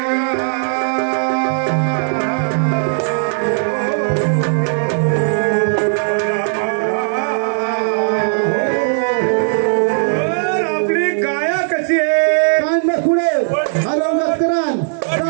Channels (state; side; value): silent; left; digital silence